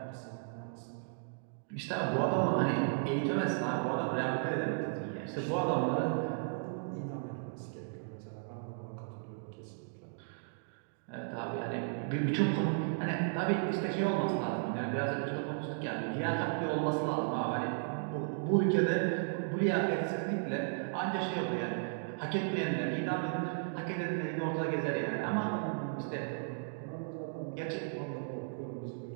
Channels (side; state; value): left; silent; digital silence